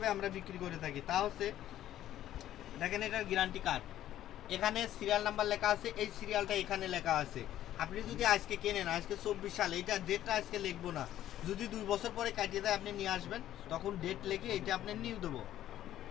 আমরা বিক্রি করে থাকি। তা হচ্ছে দেখেন এটার গ্যারান্টি কার্ড, এখানে সিরিয়াল নাম্বার লেখা আছে, এই সিরিয়ালটা এখানে লেখা আছে। আপনি যদি আজকে কেনেন, আজকে 24 সাল, এটা ডেটটা আজকে লিখবো না, যদি 2 বছর পরে কাটিয়ে দেয় আপনি নিয়ে আসবেন, তখন ডেট লিখে এটা আপনি নিউ দেবো।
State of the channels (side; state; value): right; quieter; 12.6 dB